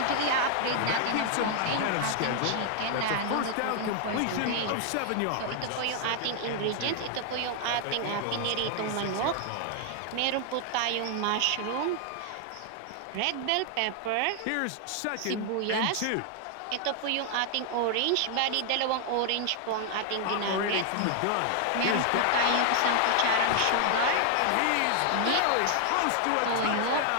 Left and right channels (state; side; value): different; both; correlation 0.00